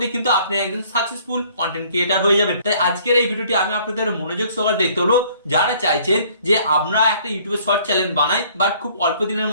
কিন্তু আপনি একজন সাকসেসফুল কন্টেন্ট ক্রিয়েটার হয়ে যাবেন। তাই আজকের এই ভিডিওটি আমি আপনাদের মনোযোগ সহকারে দেখতে হলো, যারা চাইছেন যে আমরা একটা ইউটিউবে শর্ট চ্যানেল বানাই বাট খুব অল্প দিনের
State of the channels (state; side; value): inverted; both; correlation -0.58